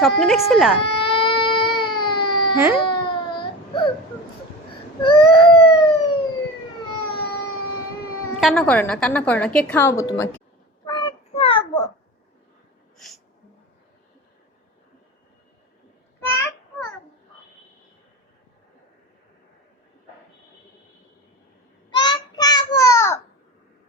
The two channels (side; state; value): both; normal; correlation 0.29